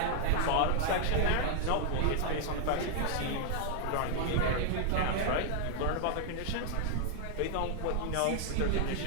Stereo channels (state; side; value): different; both; correlation -0.01